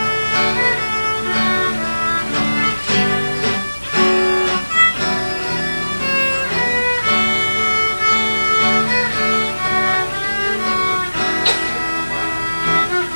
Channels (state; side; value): inverted; both; correlation -1.00